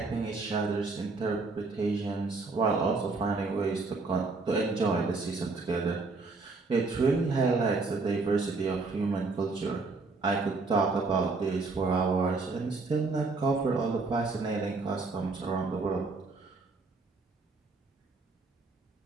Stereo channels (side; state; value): left; quieter; 3.8 dB